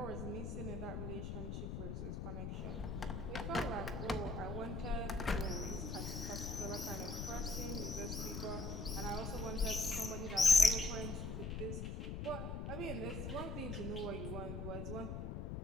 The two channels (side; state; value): left; noise; rumble, 4 dB below the sound